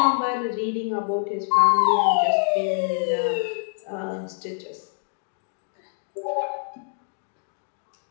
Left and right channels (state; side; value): silent; right; 61 dB below the other